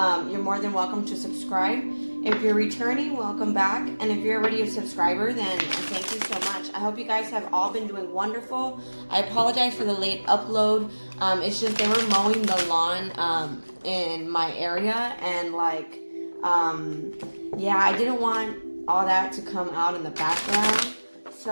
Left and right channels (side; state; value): both; inverted; correlation -1.00